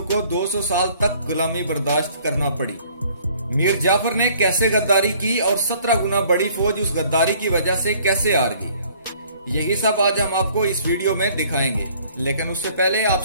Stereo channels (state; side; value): inverted; both; correlation -0.58